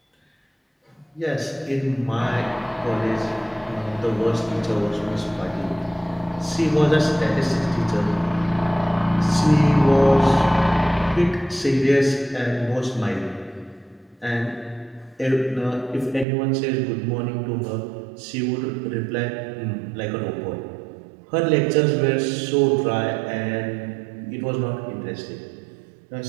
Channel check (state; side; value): drops out; left; at 16.2 s